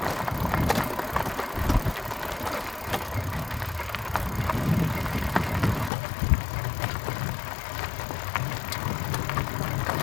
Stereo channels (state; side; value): drops out; right; at 5.9 s